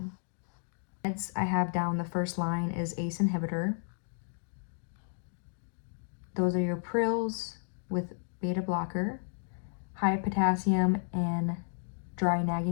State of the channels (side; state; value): right; silent; digital silence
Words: Meds I have down the first line is ACE inhibitor. Those are your Prils with beta blocker, high potassium and dry